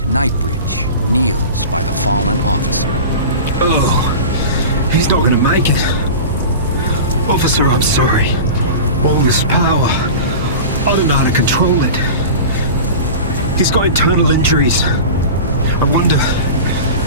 Knightbridge kneels by the fallen officer. Oh, he's not gonna make it. Officer, I'm sorry. All this power, I don't know how to control it. He's got internal injuries. I wonder,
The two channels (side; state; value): both; inverted; correlation -0.32